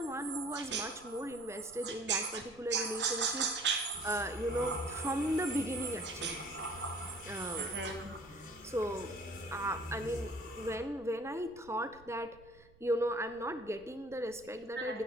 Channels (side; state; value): right; noise; rumble, 25 dB below the sound